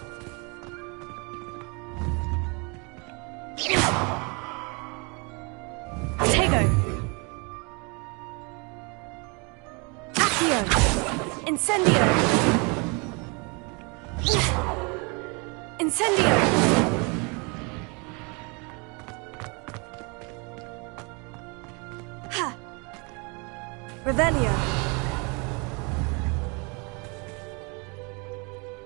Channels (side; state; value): left; quieter; 31.3 dB